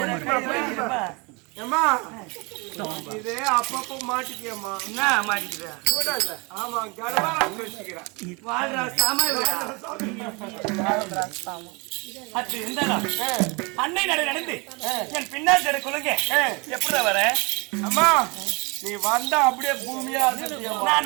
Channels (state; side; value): quieter; left; 28.7 dB